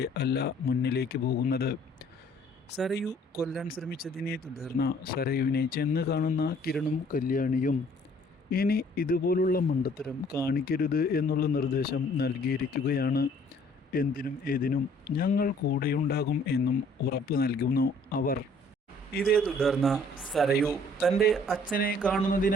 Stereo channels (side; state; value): both; normal; correlation 0.58